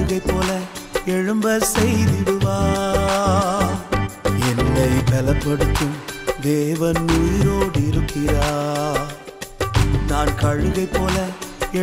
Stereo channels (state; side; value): identical; both; correlation 1.00